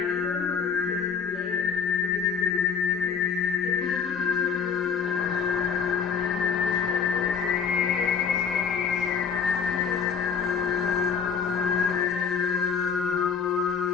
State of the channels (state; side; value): quieter; right; 6.6 dB